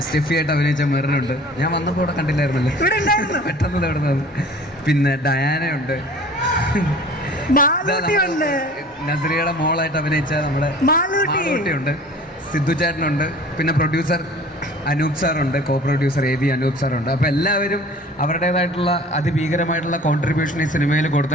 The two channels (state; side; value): normal; both; correlation 0.46